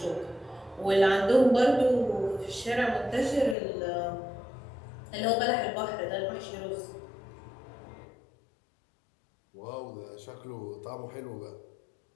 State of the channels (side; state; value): right; drops out; at 3.6 s